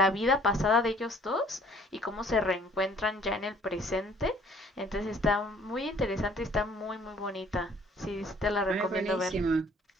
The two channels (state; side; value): normal; both; correlation 0.57